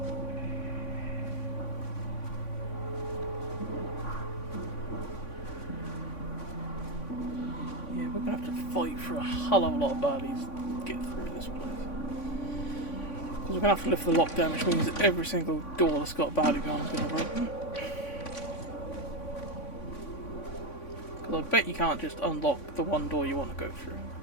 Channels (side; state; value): right; late; 3.5 ms